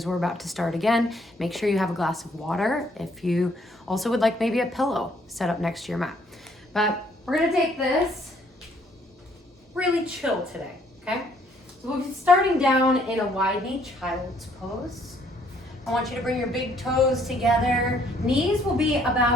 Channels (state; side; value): normal; both; correlation 0.65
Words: we're about to start again. Make sure you have a glass of water. If you also would like maybe a pillow set up next to your mat. But we're gonna take this really chill today, okay? So we'll be starting down in a wide knee child's pose. I want you to bring your big toes together. Knees will be